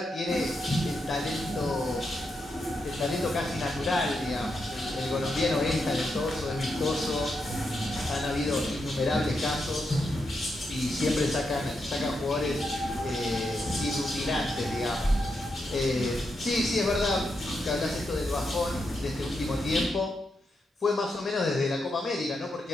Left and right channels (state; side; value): normal; both; correlation 0.84